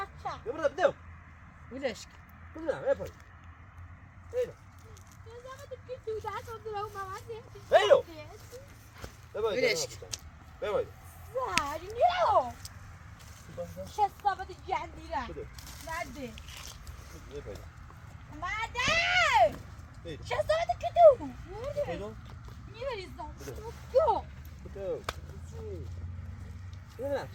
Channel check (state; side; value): identical; both; correlation 1.00